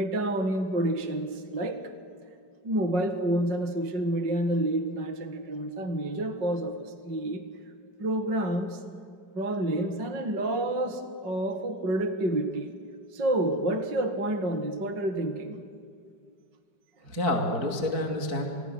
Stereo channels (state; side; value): late; left; 5.4 ms